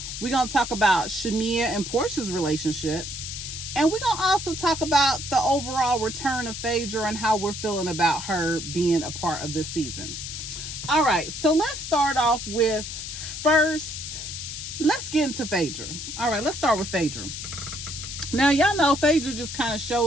We're gonna talk about Shamia and Portia's relationship, and we're gonna also talk about the overall return of Phaedra and how we're feeling about her being a part of this season. All right, so let's start off with let's get into Phaedra. All right, let's start with Phaedra. Now, y'all know Phaedra just kind of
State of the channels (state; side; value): noise; left; hiss, 7 dB below the sound